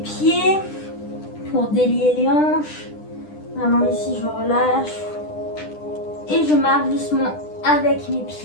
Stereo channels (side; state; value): right; late; 10 ms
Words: Pour délier les hanches. Vraiment ici, je relâche. Et je marche doucement avec mes